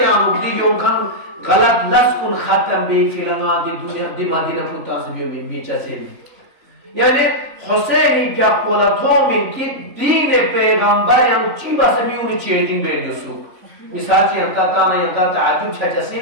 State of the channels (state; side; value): late; left; 3.5 ms